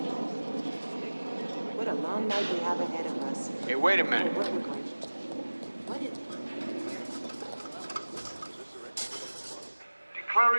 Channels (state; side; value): inverted; both; correlation -1.00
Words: What a long night we have ahead of us. Hey, wait a minute.